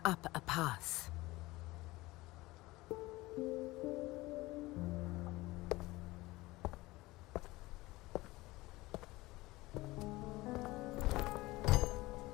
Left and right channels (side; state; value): right; quieter; 20.0 dB